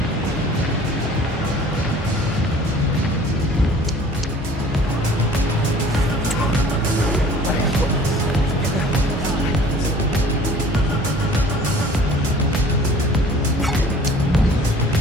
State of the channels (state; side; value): normal; both; correlation 0.50